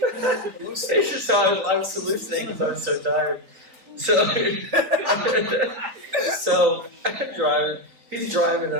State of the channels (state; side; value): late; left; 4.0 ms